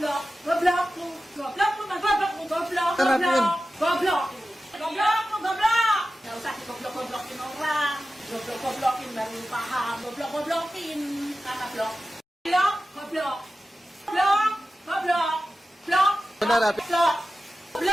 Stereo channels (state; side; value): normal; both; correlation 0.94